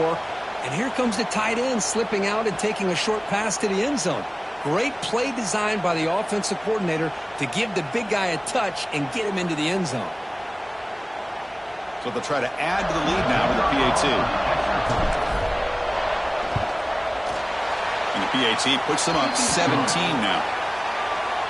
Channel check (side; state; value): both; identical; correlation 1.00